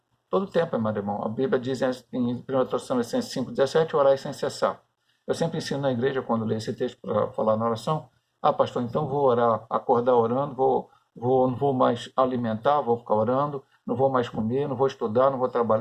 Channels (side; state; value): both; identical; correlation 1.00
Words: Todo tempo, amado irmão. A Bíblia diz em 1 Tessalonicenses 5,17, orai sem cessar. Eu sempre ensino na igreja, quando leio esse texto para falar na oração, pastor, então vou orar, acordar orando, não vou mais alimentar, vou ficar orando, não vou mais comer, não vou estudar, não vou